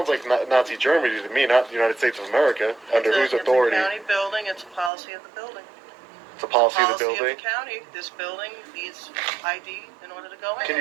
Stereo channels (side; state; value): left; drops out; at 4.9 s